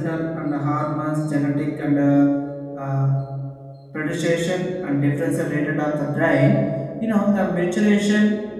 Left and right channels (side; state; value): both; identical; correlation 1.00